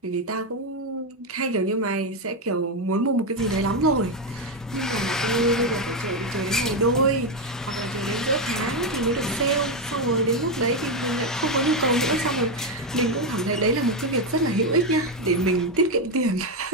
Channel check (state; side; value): normal; both; correlation 0.07